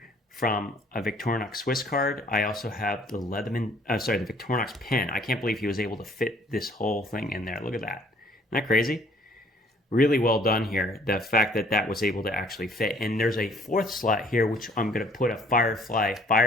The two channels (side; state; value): both; normal; correlation 0.59